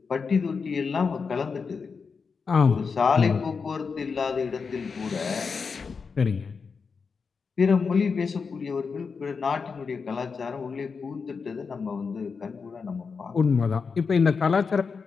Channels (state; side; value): quieter; right; 5.3 dB